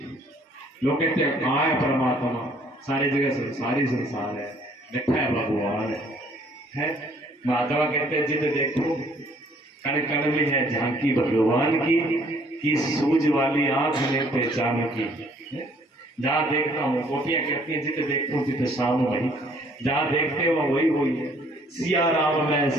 लोग कहते हैं कहाँ है परमात्मा? सारी जगह संसारी संसार है, बैठा है भगवान है। माधवा कहते हैं जिद देखो कण कण में है झांकी भगवान की सूझ वाली आंख में पहचान की। जहाँ देखता हूँ गोपियां कहती हैं जिद देखो जिद शाम वही, जहाँ देखते हो वही वही है। सिया राम मैं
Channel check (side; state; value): both; normal; correlation 0.61